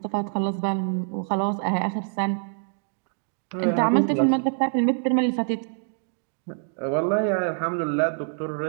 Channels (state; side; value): silent; left; digital silence